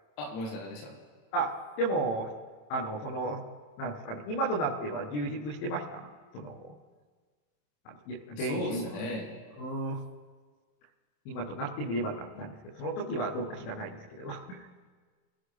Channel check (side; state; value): right; late; 27 ms